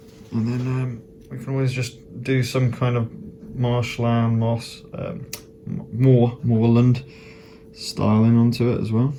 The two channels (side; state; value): both; identical; correlation 1.00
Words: And then we can always just do some kind of marshland, moss, moorland styling onto it as well.